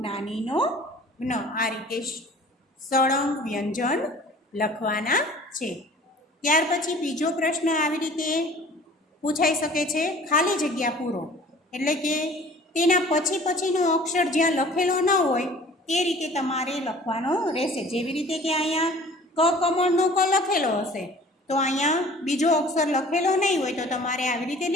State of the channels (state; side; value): normal; both; correlation 0.48